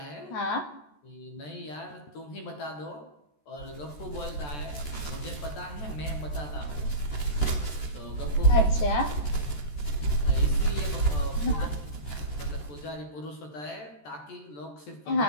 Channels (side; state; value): right; late; 14 ms